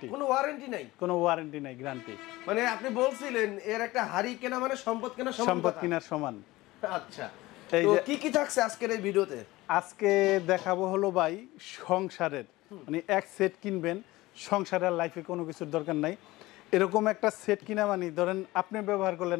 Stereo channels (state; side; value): quieter; right; 19.1 dB